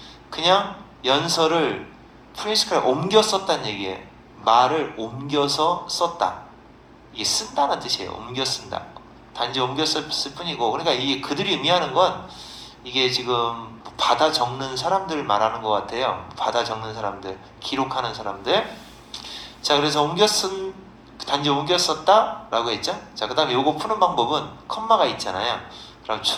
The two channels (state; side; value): identical; both; correlation 1.00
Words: 그냥 연설을 프레스카를 옮겨 썼다는 얘기예요. 말을 옮겨서 썼다. 이게 쓴다는 뜻이에요. 옮겨 쓴다. 단지 옮겨 썼을 뿐이고, 그러니까 이게 그들이 의미하는 건 이게 지금 받아 적는 사람들 말하는 것 같아요. 받아 적는 사람들, 기록하는 사람들. 자, 그래서 단지 옮겨 썼다라고 했죠. 자, 그 다음에 요거 푸는 방법은 컴마가 있잖아요. 그럼